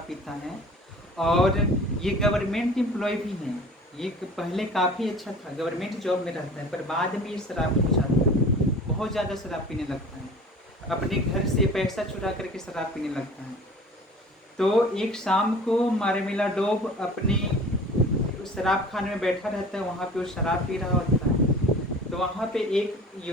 पीता है, और ये गवर्नमेंट एम्प्लॉय भी है। ये पहले काफ़ी अच्छा था, गवर्नमेंट जॉब में रहता है, पर बाद में ये शराबी हो जाता है, बहुत ज़्यादा शराब पीने लगता है, अपने घर से पैसा चुरा करके शराब पीने लगता है। तो एक शाम को मार्मेलाडोव अपने शराब खाने में बैठा रहता है, वहाँ पे वो शराब पी रहा होता है। तो वहाँ पे एक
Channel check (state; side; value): normal; both; correlation 0.43